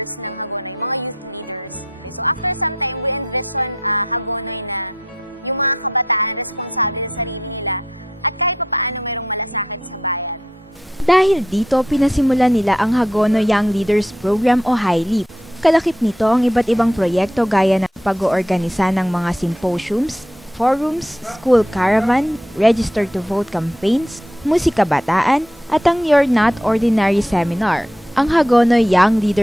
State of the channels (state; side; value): normal; both; correlation 0.76